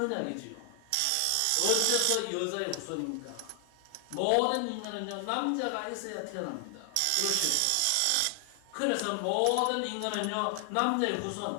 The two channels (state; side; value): different; both; correlation 0.00